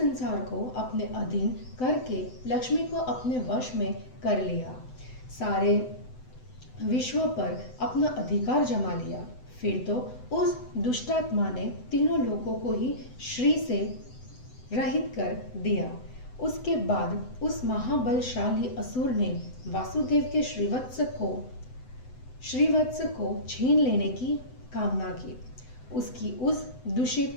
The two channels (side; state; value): right; late; 7.9 ms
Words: को अपने अधीन करके लक्ष्मी को अपने वश में कर लिया, सारे विश्व पर अपना अधिकार जमा लिया। फिर तो उस दुष्टात्मा ने तीनों लोकों को ही श्री से रहित कर दिया। उसके बाद उस महाबलशाली असुर ने वासुदेव के श्रीवत्स को छीन लेने की कामना की। उसकी उस